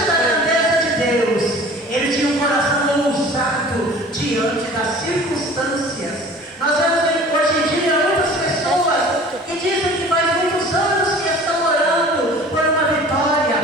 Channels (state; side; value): normal; both; correlation 0.45